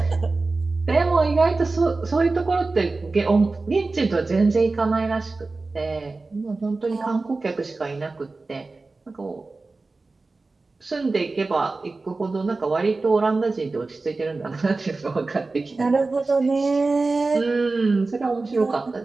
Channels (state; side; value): quieter; left; 3.6 dB